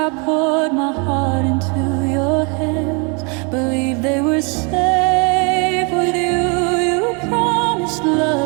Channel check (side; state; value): left; quieter; 33.9 dB